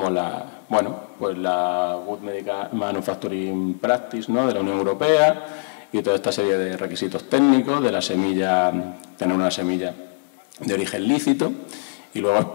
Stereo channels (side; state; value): right; silent; 63 dB below the other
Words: la Good Medical Manufacturing Practice, ¿no?, de la Unión Europea, y toda esta serie de requisitos técnicos de la semilla, tener una semilla de origen lícito, y